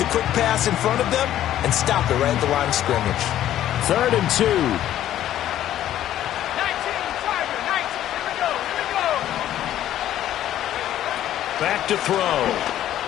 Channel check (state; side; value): quieter; right; 12.2 dB